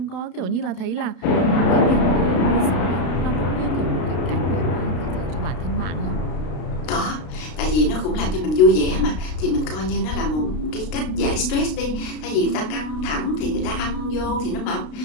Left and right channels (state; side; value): late; right; 33 ms